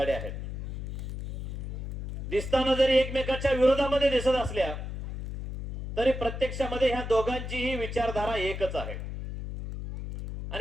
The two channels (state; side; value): noise; left; hum, 6 dB below the sound